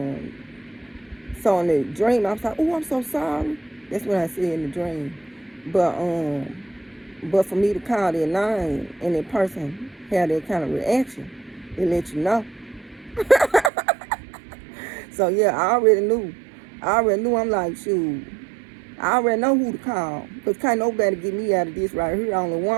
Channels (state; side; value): drops out; left; at 13.7 s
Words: so in the dream, I was like, oh, I'm so sorry. That's what I said in the dream. But for me to call their name and that person had that kind of reaction, it let you know. So yeah, I already knew. I'm like, shoot, I already know who to call. Because can't nobody get me out of this right here. Only